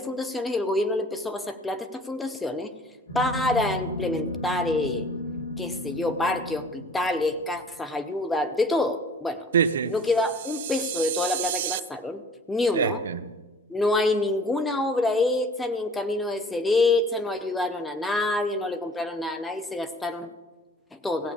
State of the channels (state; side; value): normal; both; correlation 0.48